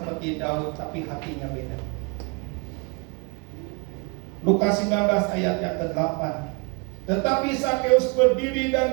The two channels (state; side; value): quieter; left; 33.0 dB